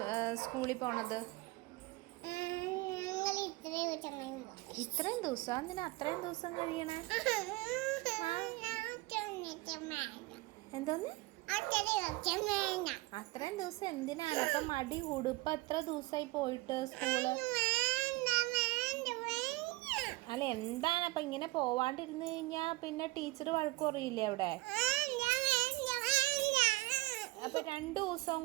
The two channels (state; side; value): quieter; left; 22.5 dB